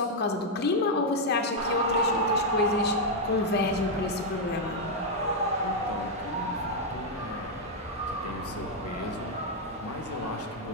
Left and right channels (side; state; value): both; normal; correlation -0.01